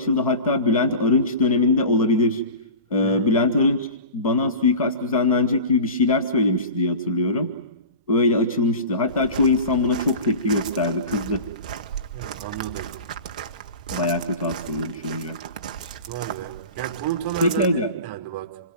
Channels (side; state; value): both; inverted; correlation -0.33